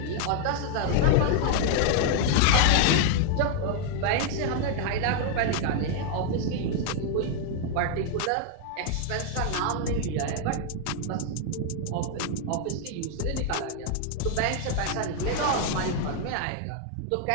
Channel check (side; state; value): both; different; correlation 0.00